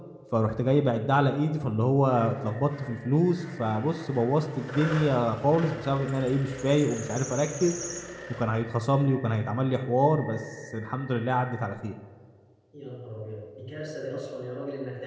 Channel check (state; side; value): identical; both; correlation 1.00